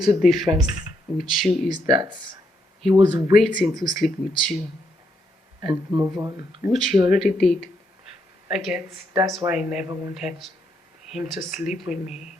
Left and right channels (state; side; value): normal; both; correlation 0.77